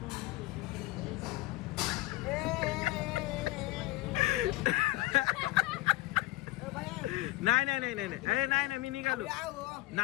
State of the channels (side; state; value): right; quieter; 18.4 dB